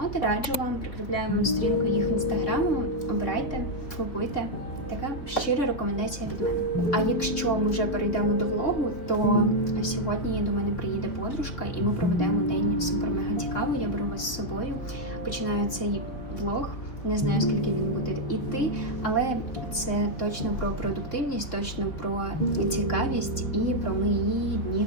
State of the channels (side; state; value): right; late; 3.5 ms